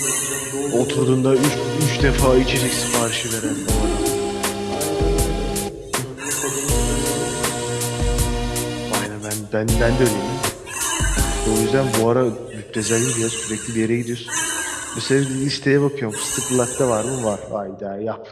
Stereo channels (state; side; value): identical; both; correlation 1.00